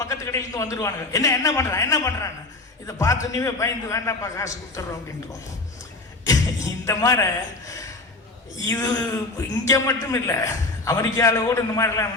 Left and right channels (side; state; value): right; quieter; 3.2 dB